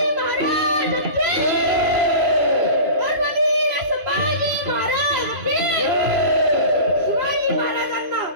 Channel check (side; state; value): left; late; 3.0 ms